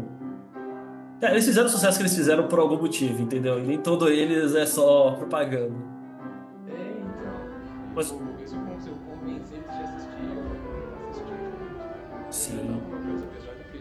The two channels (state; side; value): identical; both; correlation 1.00